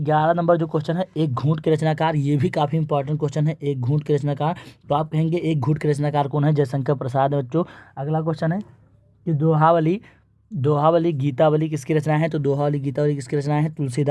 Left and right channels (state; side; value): identical; both; correlation 1.00